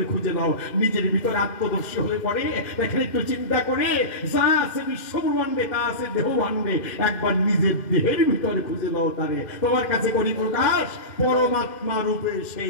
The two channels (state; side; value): late; right; 2.1 ms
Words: খুঁজে নাও। নিজের ভিতরে আত্মদর্শী হয়ে পড়ে দেখেন, একটু চিন্তা করে যা আছে বিশ্বব্রহ্মাণ্ডে তা আছে দেহভাণ্ডে, একবার নিজের দেহের ভিতরে খুঁজে নাও তারে। তোমার কাছে করি প্রকাশ, পরমাত্মা রূপে